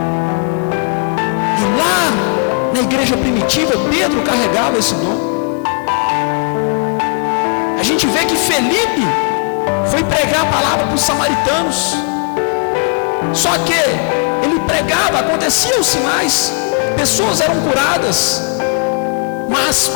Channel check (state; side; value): quieter; right; 39.9 dB